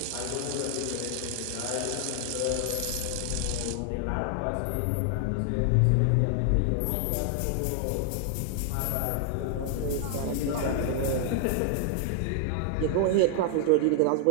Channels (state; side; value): different; both; correlation 0.00